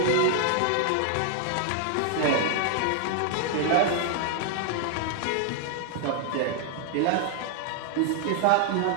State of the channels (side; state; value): both; different; correlation 0.00